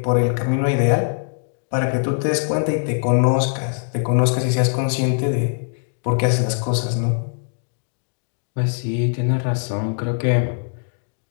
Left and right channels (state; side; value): silent; right; digital silence